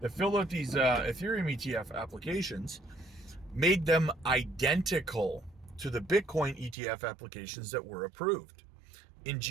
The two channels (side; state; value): left; drops out; at 6.8 s